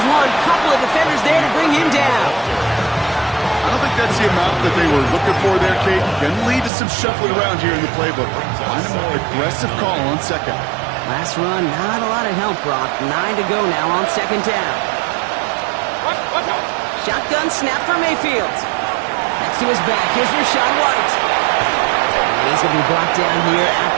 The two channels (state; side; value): drops out; left; at 6.7 s